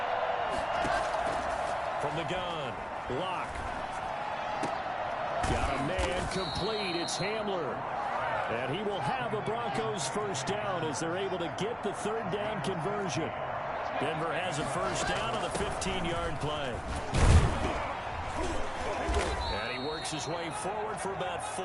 From the gun, Locke. Got a man complete. It's Hamler. And he will have a Broncos first down as they're able to get the 3rd down conversion. Denver has a first down on the 15-yard play. And he works his way forward for about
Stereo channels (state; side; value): identical; both; correlation 1.00